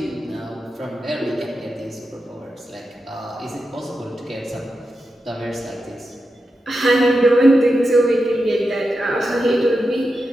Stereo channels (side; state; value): both; normal; correlation 0.89